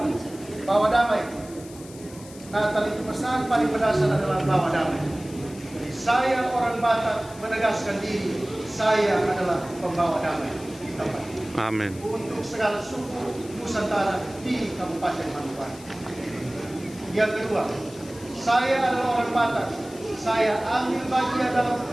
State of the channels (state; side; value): noise; left; hiss, 19 dB below the sound